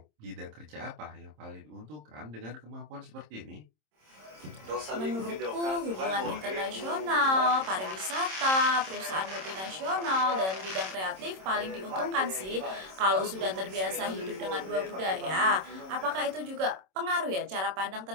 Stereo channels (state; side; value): late; left; 26 ms